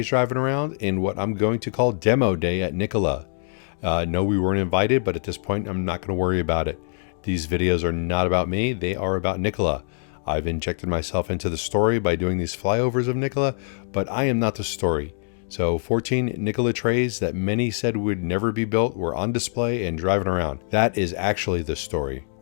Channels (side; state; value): right; silent; digital silence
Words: driving around in what I'm going to call Demo Day at Nikola. No, we weren't invited, but at this point, I'm not going to worry about it. These videos are not about me, they are about Nikola. I've injected myself into the story by doing these flyovers of Nikola, but I am not the story. So 14 Nikola trays that many said would never be built were on display and driving around. That is actually the story.